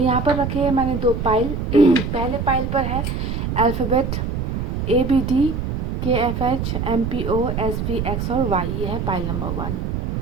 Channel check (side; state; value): right; noise; rumble, 2 dB below the sound